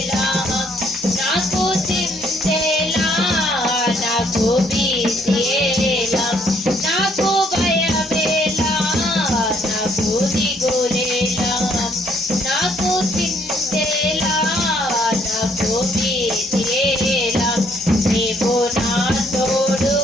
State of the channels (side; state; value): both; normal; correlation 0.67